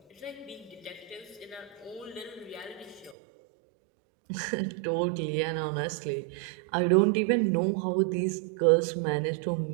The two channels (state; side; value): drops out; left; at 3.2 s